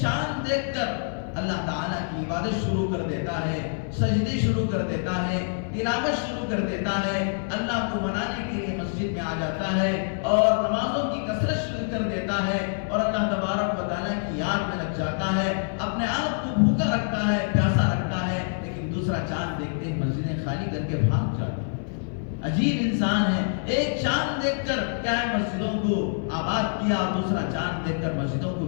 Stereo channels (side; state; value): right; silent; 61 dB below the other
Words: دیکھ کر اللہ تعالیٰ کی عبادت شروع کر دیتا ہے، سجدے شروع کر دیتا ہے، تلاوت شروع کر دیتا ہے، اللہ کو منانے کے لیے مسجد میں آ جاتا ہے اور نمازوں کی کثرت شروع کر دیتا ہے اور اللہ تبارک و تعالیٰ کی یاد میں لگ جاتا ہے، اپنے آپ کو بھوکا رکھتا ہے، پیاسا رکھتا ہے، لیکن دوسرا چاند دیکھتے ہی مسجدیں خالی کر کے بھاگ جاتا ہے. عجیب انسان ہے، ایک چاند دیکھ کر کیا ہے مسجدوں کو آباد کیا، دوسرا چاند دیکھ کر مسجدوں کو